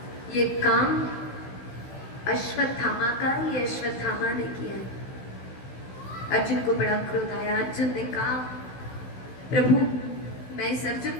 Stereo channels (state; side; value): late; right; 16 ms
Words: ये काम अश्वत्थामा का, ये अश्वत्थामा ने किया है। अर्जुन को बड़ा क्रोध आया। अर्जुन ने कहा, प्रभु मैं इस